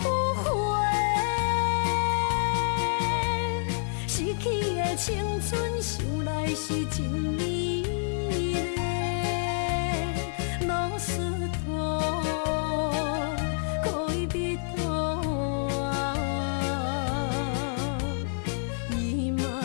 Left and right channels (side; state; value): right; silent; 59 dB below the other